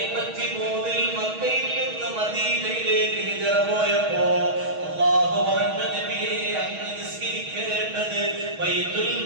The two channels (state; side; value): late; left; 6.3 ms